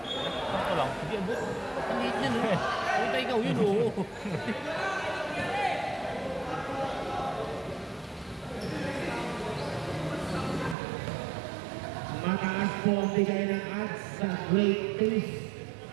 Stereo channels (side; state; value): left; drops out; at 10.8 s